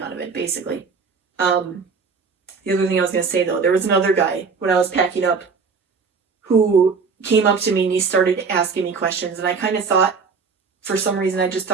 of it, basically. The other thing I was going to say, though, there was another guy, when I was packing up, who came up to me and he started asking me questions, and I kind of thought, for some reason, I just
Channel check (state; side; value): quieter; left; 5.1 dB